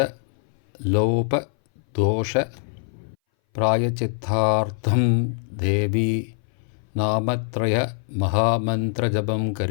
லோப தோஷ பிராயச்சித்தார்த்தம் தேவி நாமத்ரய மகாமந்திர ஜபம்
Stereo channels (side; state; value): right; silent; 60 dB below the other